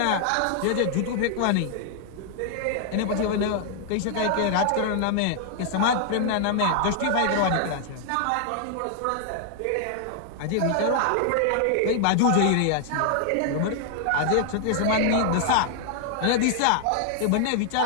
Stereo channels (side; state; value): both; different; correlation 0.00